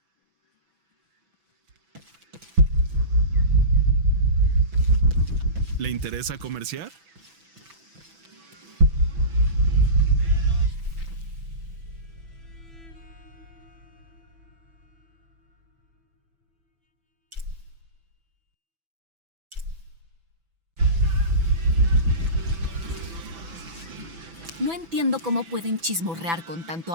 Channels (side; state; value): left; late; 6.0 ms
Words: ¿Le interesa comerciar? No entiendo cómo pueden chismorrear con tanto